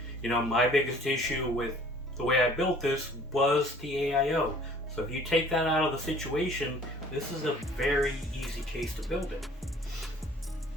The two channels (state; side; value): normal; both; correlation 0.52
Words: you know, my biggest issue with the way I built this was the AIO. So if you take that out of the situation, this is a very easy case to build in.